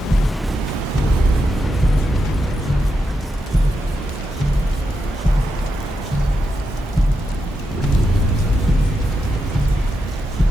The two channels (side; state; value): both; normal; correlation 0.85